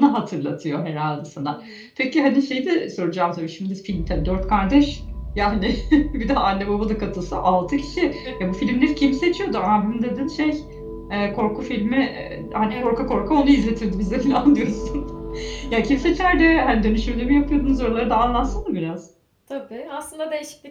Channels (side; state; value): both; identical; correlation 1.00